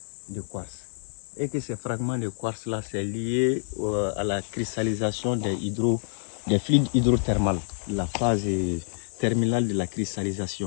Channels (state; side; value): silent; right; 60 dB below the other